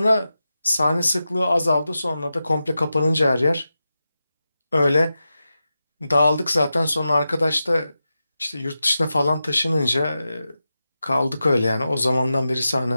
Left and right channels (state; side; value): inverted; both; correlation -0.91